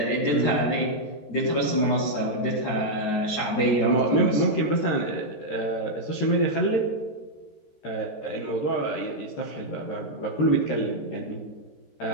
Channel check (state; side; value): late; right; 13 ms